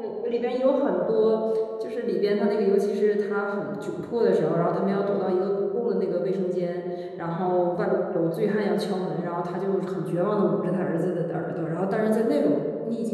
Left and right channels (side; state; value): both; identical; correlation 1.00